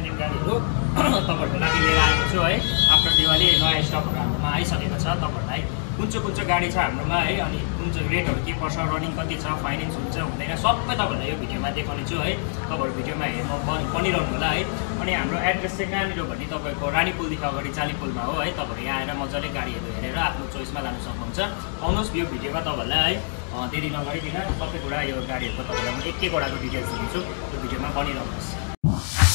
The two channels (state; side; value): silent; right; 62 dB below the other